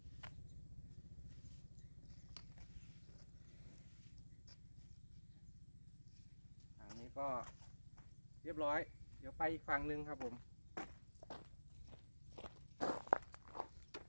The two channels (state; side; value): inverted; both; correlation -1.00